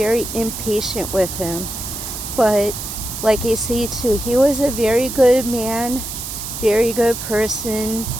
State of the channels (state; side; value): noise; right; hiss, 7 dB below the sound